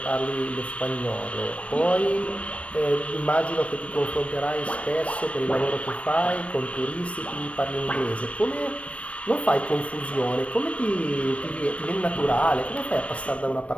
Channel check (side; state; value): right; late; 0.063 ms